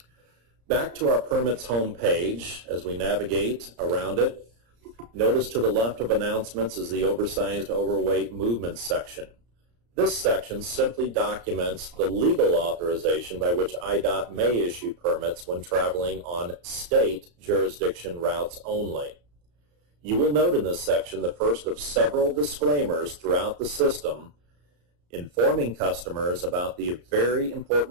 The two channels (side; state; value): left; late; 34 ms